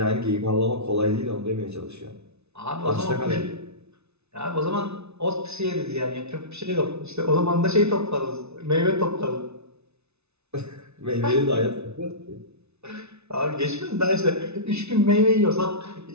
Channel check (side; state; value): left; late; 0.80 ms